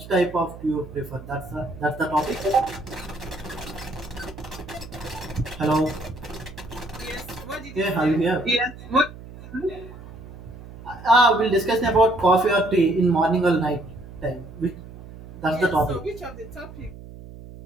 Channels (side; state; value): right; noise; hum, 15 dB below the sound